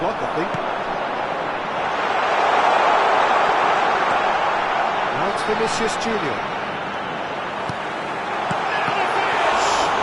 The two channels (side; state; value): both; identical; correlation 1.00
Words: I think. Now it's Vinicius Junior.